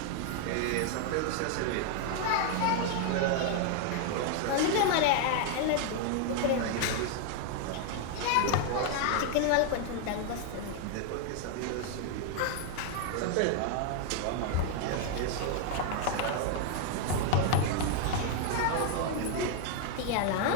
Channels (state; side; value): different; both; correlation 0.00